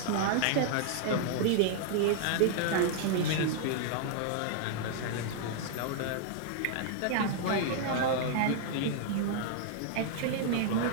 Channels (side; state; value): both; different; correlation -0.01